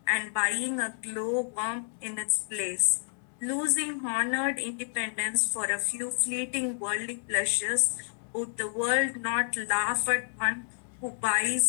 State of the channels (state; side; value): silent; right; digital silence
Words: and buying a glowworm in its place? losing honored independence for a few fleeting worldly pleasures, would the world not laugh at one who